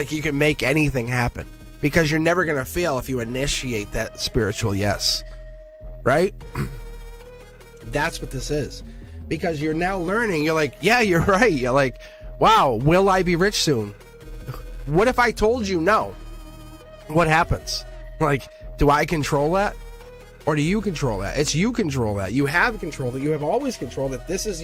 you can make anything happen, because you're never going to fail if you initiate that spiritual yes, right? That's what this is, because you're now learning. You're like, yeah, you're right. You're like, wow, will I be rich soon? What if I told you no? What happens? Like, do I control that? Or do you control that? It's you control that. You have control that. You have always controlled it. This is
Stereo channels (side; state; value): both; identical; correlation 1.00